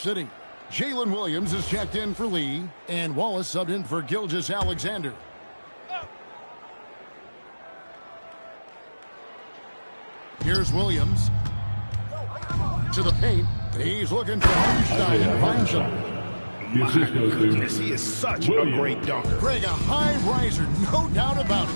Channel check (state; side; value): inverted; both; correlation -1.00